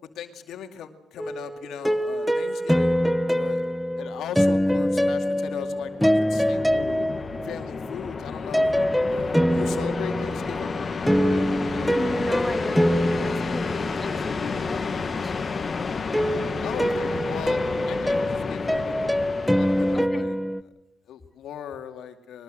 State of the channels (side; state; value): both; normal; correlation 0.95